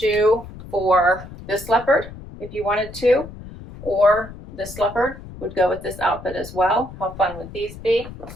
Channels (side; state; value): left; noise; rumble, 14 dB below the sound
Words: for this leopard if you wanted to, or this leopard would go with this outfit as well. How fun would these be?